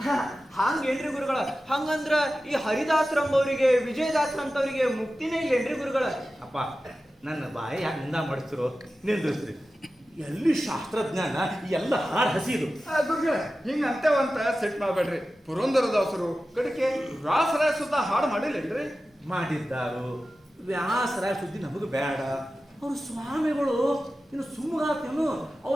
ಹಂಗೇನ್ರಿ ಗುರುಗಳ? ಹಂಗಂದ್ರ ಈ ಹರಿದಾಸರಂಬವ್ರಿಗೆ ವಿಜಯದಾಸರಂತವ್ರಿಗೆ ಮುಕ್ತಿನೇ ಇಲ್ಲೇನ್ರಿ ಗುರುಗಳ? ಅಪ್ಪ ನನ್ನ ಬಾಯಿ ಯಾಕೆ ನಿಂದ ಮಾಡಿಸ್ತಿರೋ ನಿಂದ್ರಿಸ್ರಿ. ಎಲ್ಲಿ ಶಾಸ್ತ್ರಜ್ಞಾನ, ಎಲ್ಲ ಹಾಡು ಹಸಿದು. ಗುರುಗಳ ಹಿಂಗ ಅಂತೇವಂತ ಸೆಟ್ ಮಾಡ್ಬೇಡ್ರಿ. ಪುರಂದರದಾಸರು ಕಡೆಗೆ ವ್ಯಾಸರಾಯ ಸುತ್ತ ಹಾಡು ಮಾಡಿಲ್ಲೇನ್ರಿ? ಮಾಡಿದ್ದಾರು. ವ್ಯಾಸರ ಸುದ್ದಿ ನಮಗೆ ಬೇಡ. ಅವ್ರು ಸ್ವಾಮಿಗಳು ಇನ್ನು ಸುಮ್ಮಗಾತೇನು,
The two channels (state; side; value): normal; both; correlation 0.94